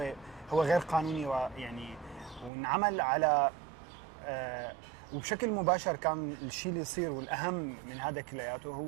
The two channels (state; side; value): drops out; left; at 2.5 s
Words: هو غير قانوني، ويعني وانعمل على وبشكل مباشر. كان الشيء اللي يصير والأهم من هذا كلياته